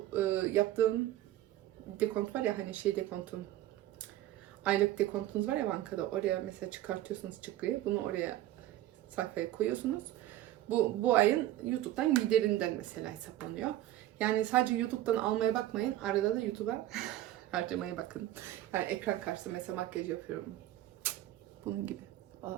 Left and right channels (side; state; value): left; quieter; 14.1 dB